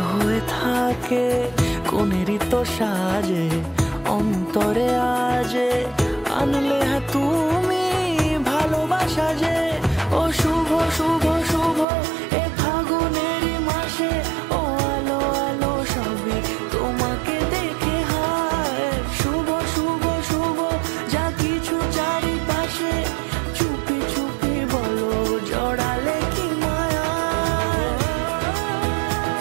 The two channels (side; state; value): left; drops out; at 11.9 s